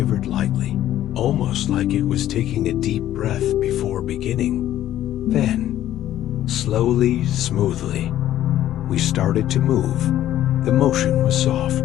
lightly, almost like it was taking a deep breath before beginning. Then, slowly, smoothly, We started to move. The motion was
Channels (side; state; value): right; quieter; 12.6 dB